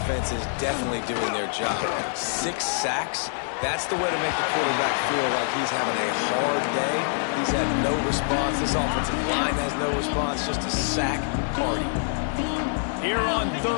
is definitely doing their job. 6 sacks. That's the way to make the quarterback feel like he's having a hard day. He's had no response. This offensive line has no response. Just a sack party. Here on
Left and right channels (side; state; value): right; silent; digital silence